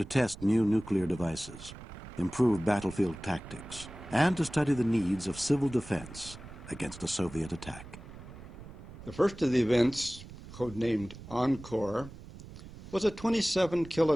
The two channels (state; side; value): noise; right; rumble, 15 dB below the sound